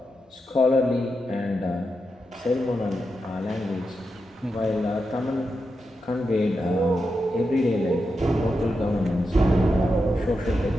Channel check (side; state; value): both; normal; correlation 0.87